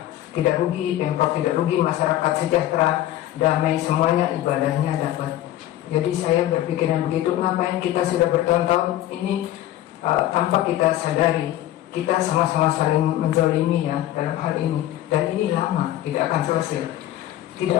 tidak rugi, Pemprov tidak rugi, masyarakat sejahtera, damai, semuanya ibadahnya dapat. Jadi saya berpikiran begitu. Ngapain kita sudah bertahun-tahun ini tanpa kita sadari kita sama-sama saling menzalimi, ya, dalam hal ini. Dan ini lama, tidak akan selesai,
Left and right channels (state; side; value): quieter; right; 13.7 dB